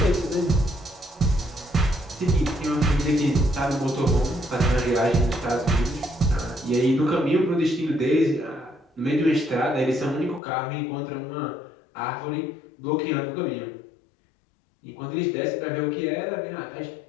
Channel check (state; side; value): drops out; right; at 10.4 s